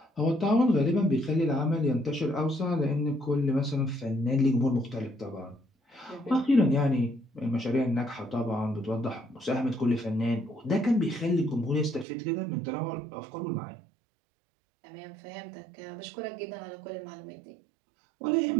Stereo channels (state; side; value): drops out; left; at 12.1 s